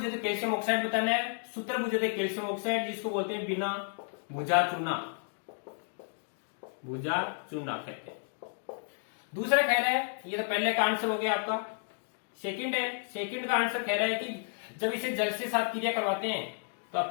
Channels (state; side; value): silent; right; 56 dB below the other